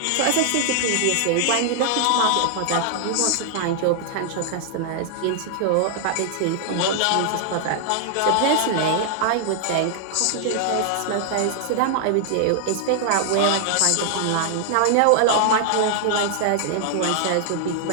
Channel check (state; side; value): different; both; correlation -0.01